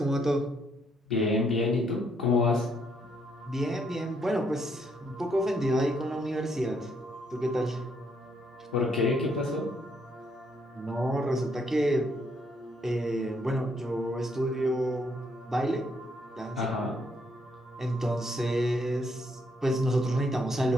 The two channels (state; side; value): normal; both; correlation 0.72